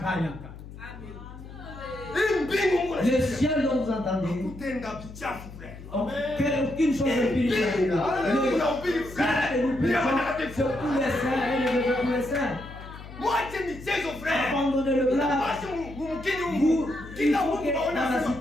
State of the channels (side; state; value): left; noise; hum, 14 dB below the sound